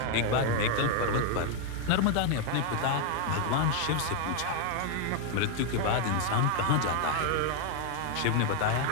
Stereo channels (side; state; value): both; different; correlation 0.00